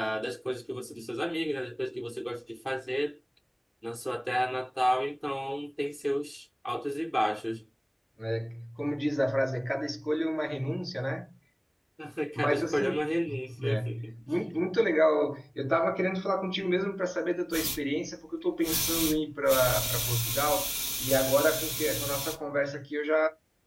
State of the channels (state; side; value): identical; both; correlation 1.00